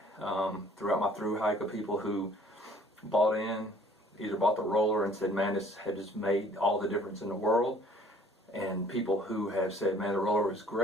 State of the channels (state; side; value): normal; both; correlation 0.55